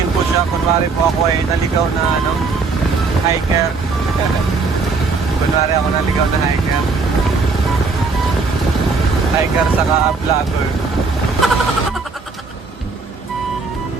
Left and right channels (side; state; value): left; quieter; 4.4 dB